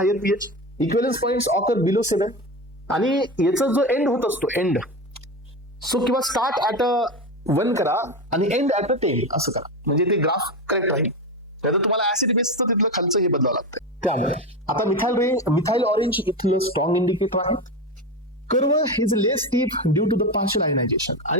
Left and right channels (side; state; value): both; normal; correlation 0.20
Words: pH, equivalence points occur below 7. आणि याचा जो एंड होत असतो, एंड, सो किंवा स्टार्ट ऍट 1 करा आणि एंड ऍट 10 असं करा, म्हणजे ते ग्राफ करेक्ट राहील. त्यात तुम्हाला ऍसिड बेसचं तिथलं खालचं हे बदलावं लागतं. त्यामुळे आता मिथाइल ऑरेंज इथलं स्ट्रॉंग इंडिकेटर आहे. Curve is less steep due to the partial ionization.